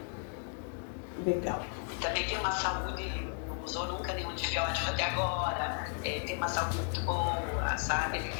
Legal. Também tem uma saúde, não usou nunca nenhum antibiótico até agora, tem uma saúde muito boa, sabe? Ele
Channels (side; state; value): right; silent; 55 dB below the other